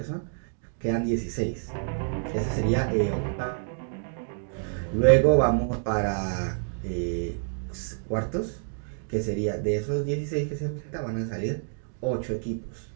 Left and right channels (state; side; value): silent; left; 59 dB below the other